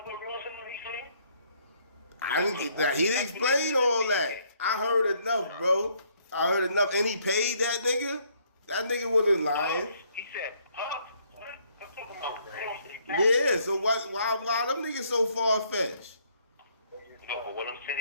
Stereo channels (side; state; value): both; inverted; correlation -0.67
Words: with Ross and what he said? I didn't get that. He didn't explain all that. I heard enough, bro. I heard enough. And he paid that nigga? That nigga wasn't lying. He said, what? I'm talking about Ross. Yeah, so why them niggas so far-fetched? No, but what I'm